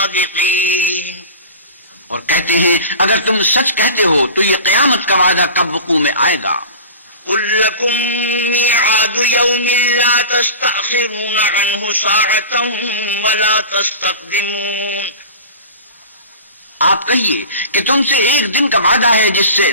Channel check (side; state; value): both; inverted; correlation -0.35